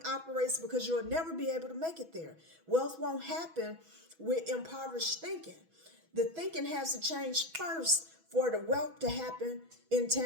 operates, because you'll never be able to make it there. Wealth won't happen with impoverished thinking. The thinking has to change first for the wealth to happen in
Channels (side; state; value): left; late; 6.1 ms